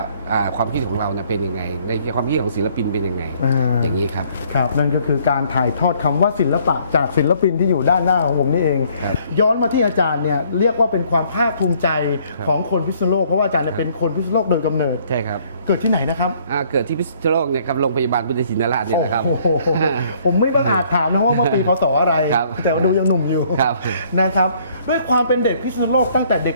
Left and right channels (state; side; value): inverted; both; correlation -0.63